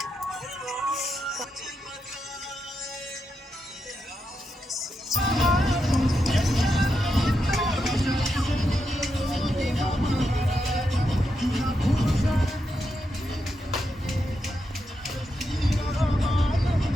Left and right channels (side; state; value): both; normal; correlation 0.84